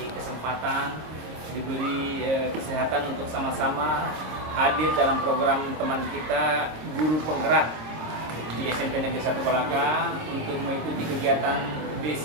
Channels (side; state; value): left; late; 26 ms